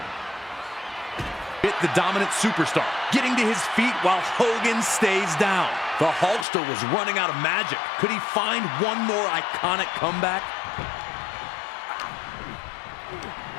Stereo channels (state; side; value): drops out; right; at 6.5 s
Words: The dominant superstar getting to his feet while Hogan stays down. The Hulkster was running out of magic. Could he find one more iconic comeback?